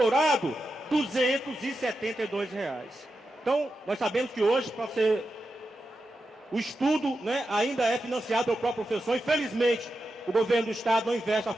R$ 272. Então, nós sabemos que hoje, para ser... o estudo, né, ainda é financiado pelo próprio professor. Infelizmente, o governo do estado não investe na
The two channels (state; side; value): normal; both; correlation 0.89